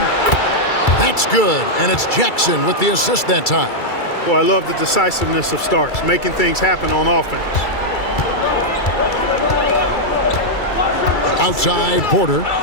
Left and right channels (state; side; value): late; right; 2.3 ms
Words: That's good. And it's Jackson with the assist that time. Well, I love the decisiveness of Starks, making things happen on offense. Outside Porter.